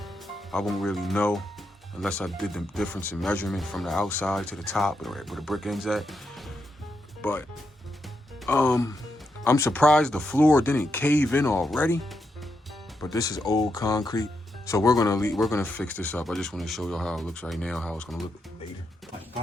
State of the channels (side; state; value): both; normal; correlation 0.83